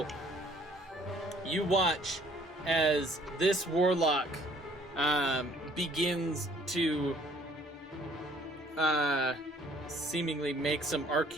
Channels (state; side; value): normal; both; correlation 0.59